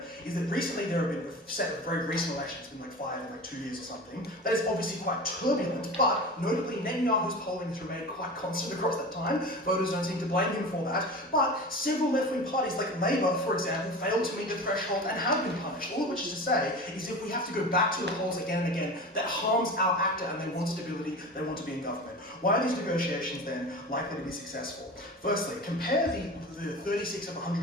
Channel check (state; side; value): normal; both; correlation 0.32